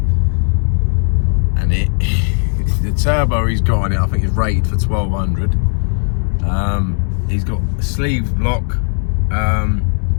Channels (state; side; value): silent; right; 63 dB below the other